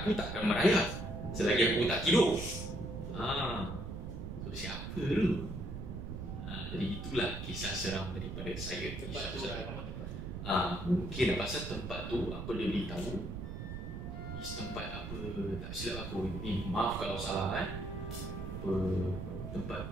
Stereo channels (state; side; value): noise; right; rumble, 6 dB below the sound